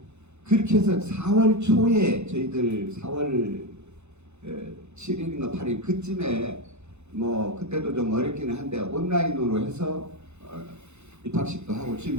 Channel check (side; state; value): left; late; 0.82 ms